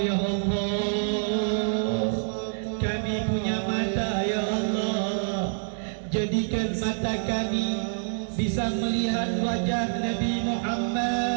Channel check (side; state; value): left; silent; digital silence